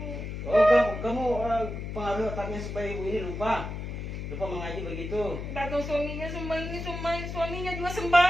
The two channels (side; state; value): left; noise; hum, 6 dB below the sound